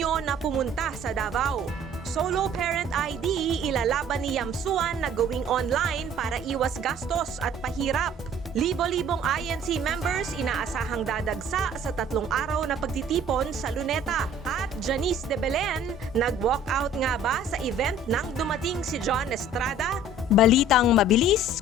na pumunta sa Davao. Solo Parent ID ilalaban ni Yamsuan na gawing online para iwas gastos at pahirap. Libo-libong INC members inaasahang dadagsa sa 3 araw na pagtitipon sa Luneta. At Janice de Belen, nag-walkout nga ba sa event nang dumating si John Estrada? Balitang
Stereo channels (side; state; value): both; normal; correlation 0.51